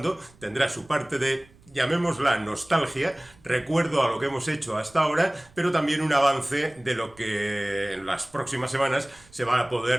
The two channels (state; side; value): noise; right; rumble, 27 dB below the sound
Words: tendrá su parte de, llamémosla, nostalgia, recuerdo a lo que hemos hecho hasta ahora, pero también un avance de lo que en las próximas semanas se va a